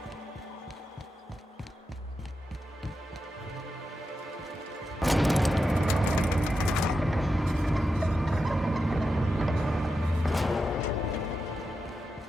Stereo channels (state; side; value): normal; both; correlation 0.88